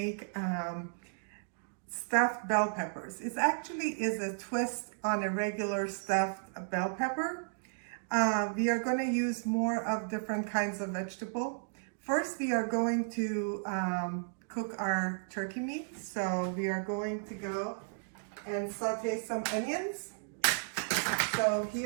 stuffed bell peppers. It actually is a twist on a regular stuffed bell pepper. We are going to use more of different kinds of vegetable. First, we are going to cook our turkey meat. So we are going to go and saute some onions. So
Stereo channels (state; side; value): silent; left; digital silence